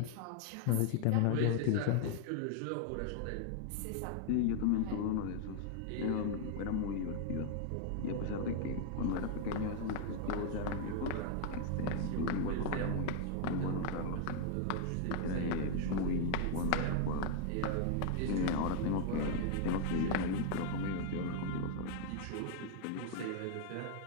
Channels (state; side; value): different; both; correlation 0.00